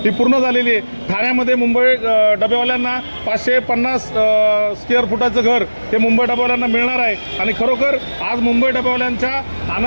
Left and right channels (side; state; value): both; inverted; correlation -1.00